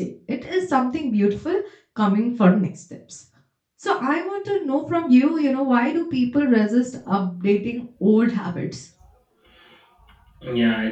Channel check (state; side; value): identical; both; correlation 1.00